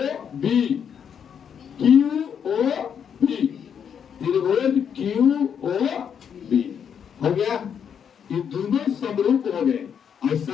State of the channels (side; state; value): right; quieter; 7.8 dB